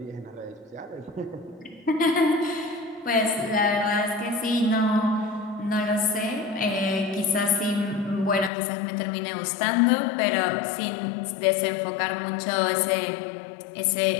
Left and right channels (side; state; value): right; drops out; at 8.5 s